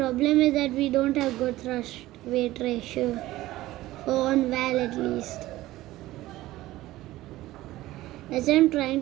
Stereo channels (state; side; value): quieter; left; 16.6 dB